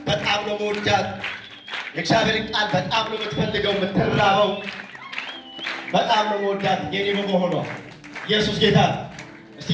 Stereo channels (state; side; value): identical; both; correlation 1.00